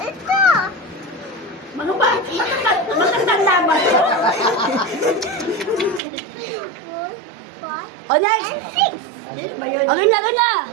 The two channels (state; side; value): drops out; left; at 6.0 s